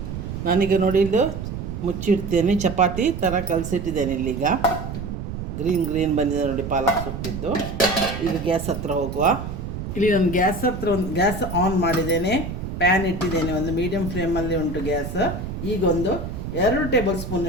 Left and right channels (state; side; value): noise; right; rumble, 6 dB below the sound